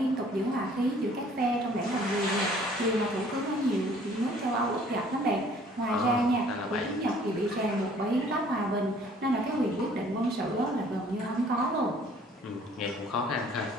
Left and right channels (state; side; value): normal; both; correlation 0.56